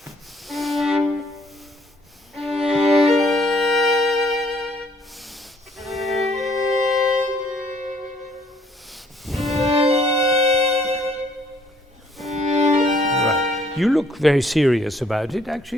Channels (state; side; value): normal; both; correlation 0.63